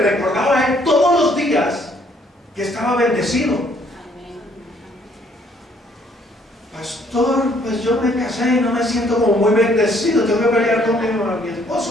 recordaba a él todos los días que estaba bendecido. Pastor, pues yo me casé y no me siento como muy bendecido, tengo que pelear con mi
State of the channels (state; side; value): normal; both; correlation 0.65